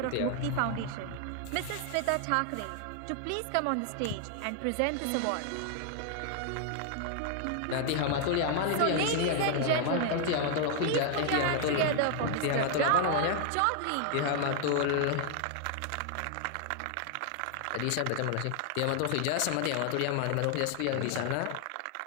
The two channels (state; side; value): different; both; correlation 0.00